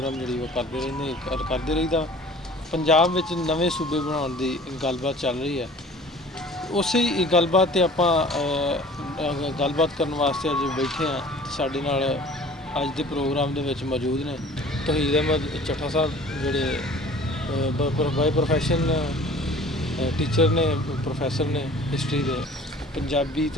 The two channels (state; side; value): normal; both; correlation 0.47